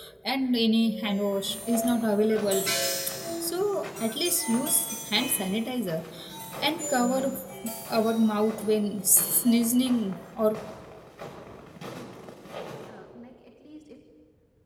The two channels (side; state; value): both; identical; correlation 1.00